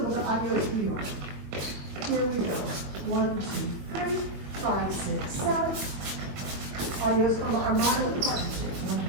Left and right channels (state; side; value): late; left; 22 ms